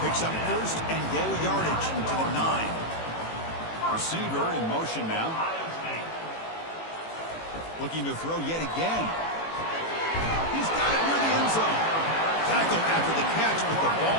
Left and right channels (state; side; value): late; right; 18 ms